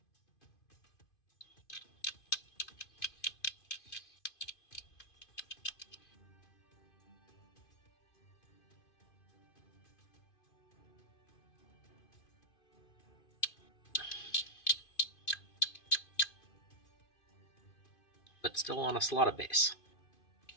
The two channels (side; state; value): right; late; 2.5 ms